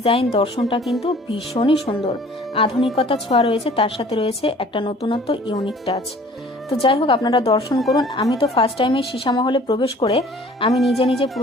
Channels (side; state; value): both; normal; correlation 0.51